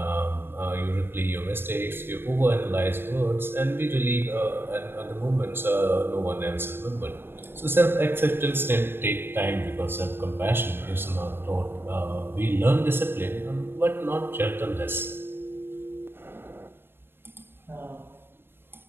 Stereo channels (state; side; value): late; left; 0.11 ms